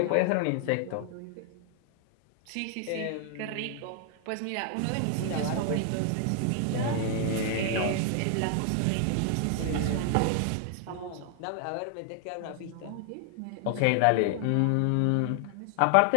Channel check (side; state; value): both; different; correlation 0.00